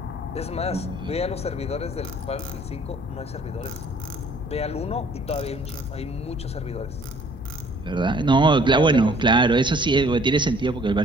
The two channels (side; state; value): both; normal; correlation 0.57